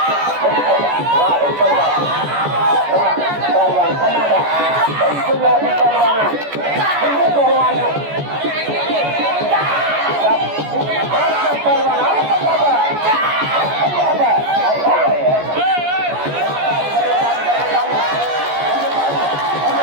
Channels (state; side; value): late; left; 14 ms